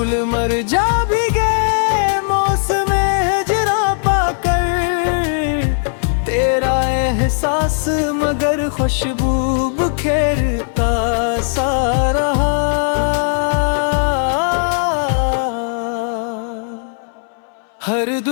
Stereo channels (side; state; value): right; silent; 63 dB below the other